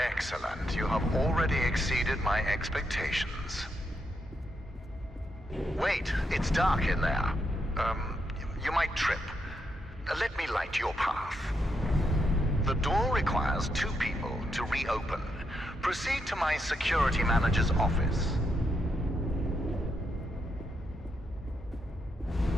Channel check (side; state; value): both; normal; correlation 0.81